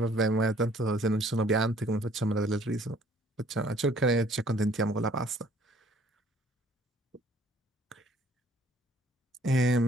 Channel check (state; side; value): normal; both; correlation 0.58